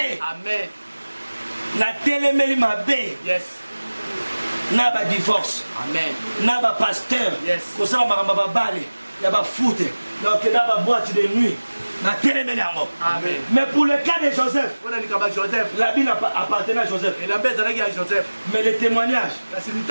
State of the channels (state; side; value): inverted; both; correlation -1.00